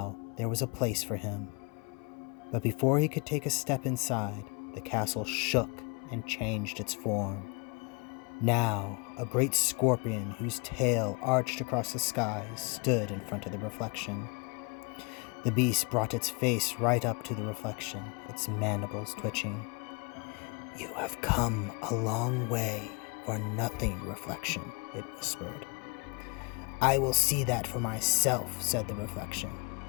there was a place for him. But before he could take a step inside, the castle shook and changed its form. Now, a great scorpion whose tail arched across the sky stood in front of the reflection. The beast brought its face right up to the reflection, its mandibles twitching. "You have come a long way for nothing, reflection," it whispered. "I will see that for myself," said the reflection.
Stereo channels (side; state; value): right; quieter; 31.8 dB